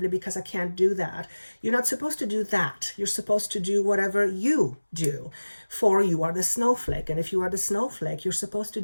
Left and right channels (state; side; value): inverted; both; correlation -1.00